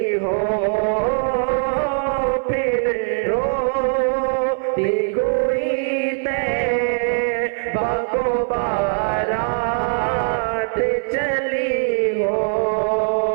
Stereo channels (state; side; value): silent; left; 58 dB below the other